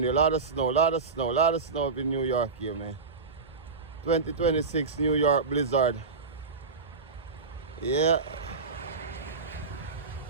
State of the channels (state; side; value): quieter; left; 4.5 dB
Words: here. A lot of snow, a lot of snow, a lot of snow up in New York here, man. 2026 New York blizzard. Yeah.